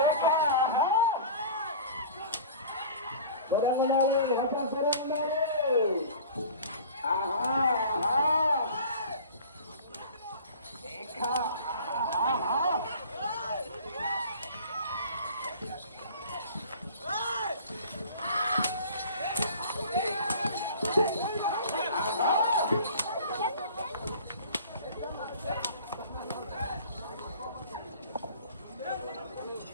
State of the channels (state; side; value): inverted; both; correlation -0.43